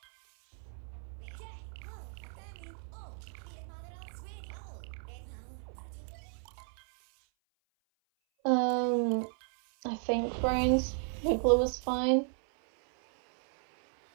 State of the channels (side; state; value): left; silent; 55 dB below the other